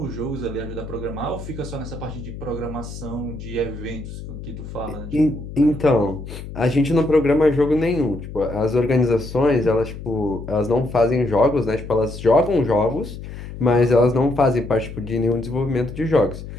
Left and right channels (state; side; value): noise; left; hum, 11 dB below the sound